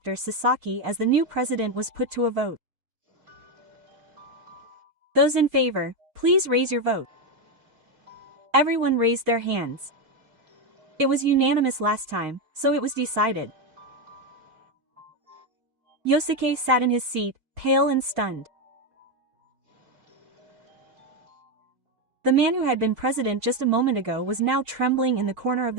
Sasaki as the new president was put to a vote. Those in favor, please raise your vote. Everyone raised their hands. It was unanimous last time, so it was decided. Yosuke sat in his seat, pale and stunned. The man who had been president just a moment ago was now trembling in the corner of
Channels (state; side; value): late; left; 4.4 ms